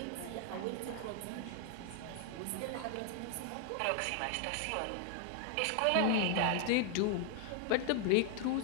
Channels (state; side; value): different; both; correlation 0.00